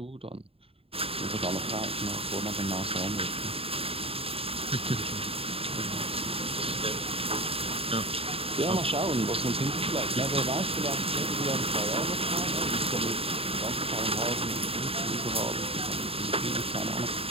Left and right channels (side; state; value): left; late; 0.27 ms